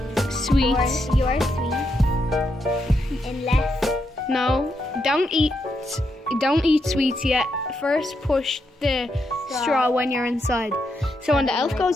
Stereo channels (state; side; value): normal; both; correlation 0.81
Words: Sweets. Your sweets. Unless. No, don't eat sweets yet. First push the straw when you're inside. So when the elf